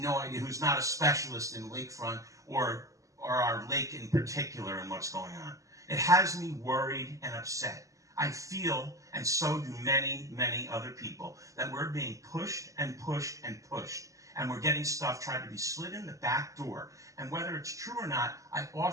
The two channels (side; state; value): left; late; 0.16 ms